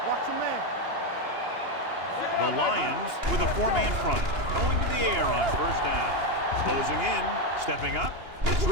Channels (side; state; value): left; late; 2.9 ms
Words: Watch a man. The Lions with a four-man front, going to the air on first down. Closing in, stepping up, gets